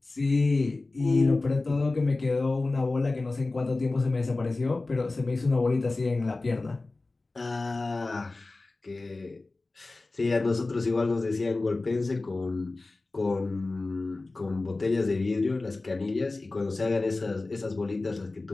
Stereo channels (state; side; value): quieter; right; 3.3 dB